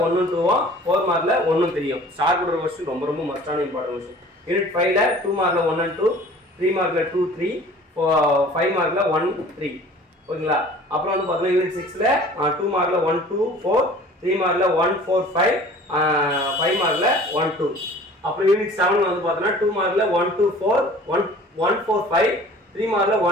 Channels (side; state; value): both; normal; correlation 0.47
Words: 1, 2, 4 மார்க்கில் 1, 3. ஸ்டார் போடுற கொஸ்டின் ரொம்ப ரொம்ப மஸ்டான இம்பார்ட்டன்ட் கொஸ்டின். யூனிட் 5ல் 2 மார்க்கில் 1 and 2, 3 மார்க்கில் 2, 3, 5 மார்க்கில் 1, 3. ஓகேங்களா? அப்புறம் வந்து பார்த்தீங்கன்னா யூனிட் 6ல் 2 மார்க்கில் 1, 2, 4, 3 மார்க்கில் 1, 4, 5, 5 மார்க்கில் 1, 2. அப்புறம் யூனிட் 7 வந்து பார்த்தீங்கன்னா 2 மார்க்கில் 1, 2, 4, 1, 4, 5, 3 மார்க்கில்